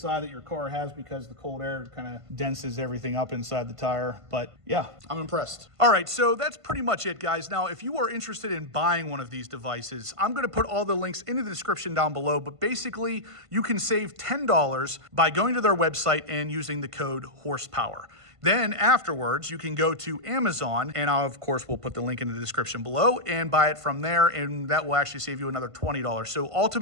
that your car has because the cold air kind of denses everything up inside the tire. But yeah, I'm impressed. All right, so that's pretty much it, guys. Now, if you are interested in buying one of these devices, I'm gonna put all the links in the description down below, but basically you can save $10 by going to their website and using the code horsepower. Then afterwards, you can go to Amazon, and I, of course, will put the link in the description below, and buy it from there, and that will actually save you another $20. So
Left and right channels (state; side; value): late; left; 1.5 ms